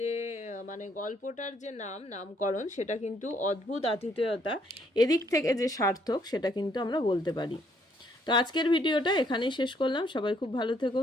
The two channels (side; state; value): both; normal; correlation 0.68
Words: গল্পটার যে নামকরণ সেটা কিন্তু অদ্ভুত আতিথেয়তা, এদিক থেকে যে সার্থক সেটা কিন্তু আমরা বলতে পারি। তো আজকের ভিডিওটা এখানেই শেষ করলাম। সবাই খুব ভালো থেকো,